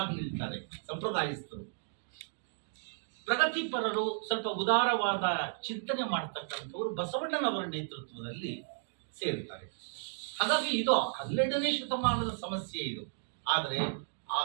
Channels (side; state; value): left; silent; digital silence